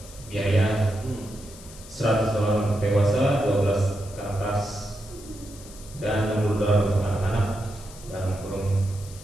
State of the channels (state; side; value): noise; left; hiss, 18 dB below the sound